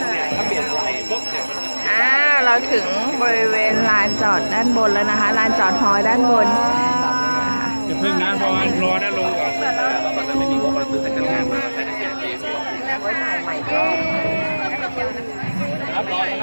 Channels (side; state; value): both; inverted; correlation -1.00